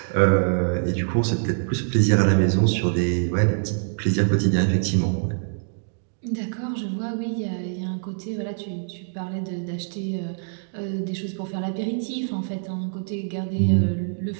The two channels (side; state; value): left; silent; digital silence